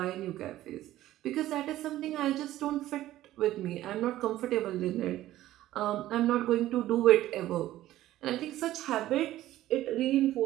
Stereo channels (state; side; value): quieter; left; 14.5 dB